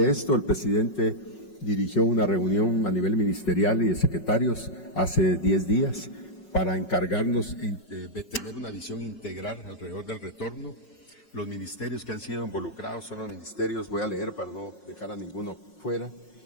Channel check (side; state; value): right; late; 5.4 ms